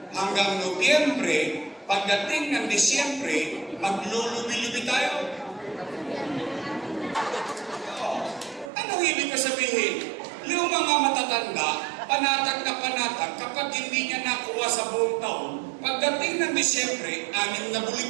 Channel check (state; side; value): drops out; left; at 8.7 s